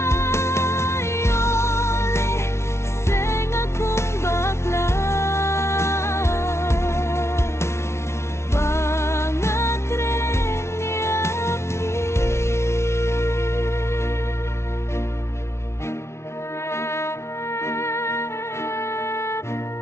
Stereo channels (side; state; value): right; late; 0.13 ms